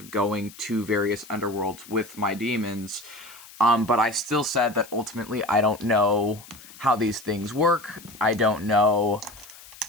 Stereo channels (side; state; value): left; noise; hiss, 19 dB below the sound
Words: going to various underworlds with my demons, but I still said that ultimately I don't know how these things work. I don't know